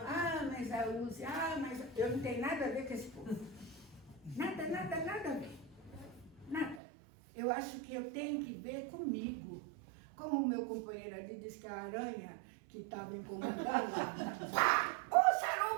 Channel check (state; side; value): drops out; left; at 6.8 s